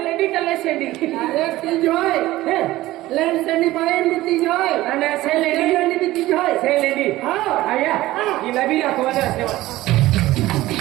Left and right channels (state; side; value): quieter; left; 16.9 dB